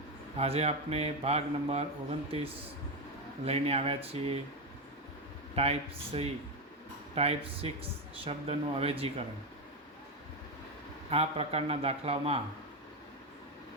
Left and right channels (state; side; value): normal; both; correlation 0.10